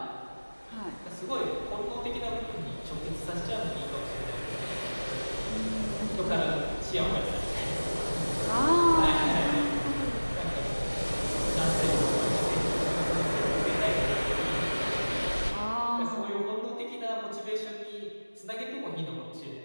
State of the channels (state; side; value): inverted; both; correlation -1.00